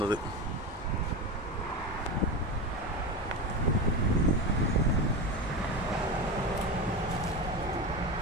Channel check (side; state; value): both; normal; correlation 0.22